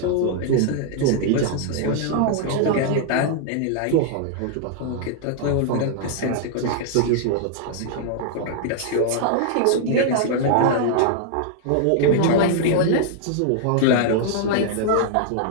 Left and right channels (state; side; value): different; both; correlation -0.01